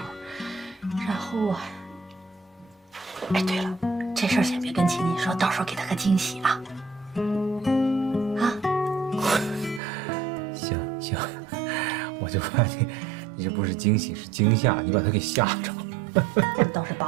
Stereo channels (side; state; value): left; drops out; at 9.8 s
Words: 然后啊，哎，对了，这事儿先别跟琴琴说，到时候给她个惊喜啊。啊？行，我就怕你这不是惊喜是惊吓，你把他给吓着了。倒是